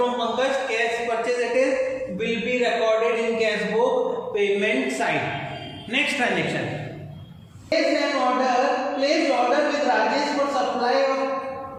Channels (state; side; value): identical; both; correlation 1.00